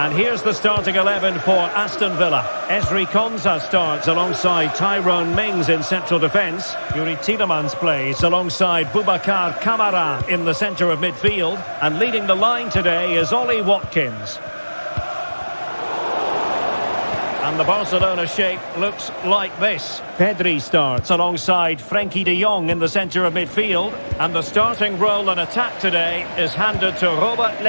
here's the starting 11 for Aston Villa. Ezri Konsa starts alongside Tyrone Mings in central defence. Yuri Tielemans plays alongside Boubacar Kamara in the centre of midfield. And leading the line today is Ollie Watkins. And the Barcelona shape looks like this. Pedri starts alongside Frenkie de Jong in the centre of midfield. And the starting role in attack today is handed to Robert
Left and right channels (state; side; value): inverted; both; correlation -1.00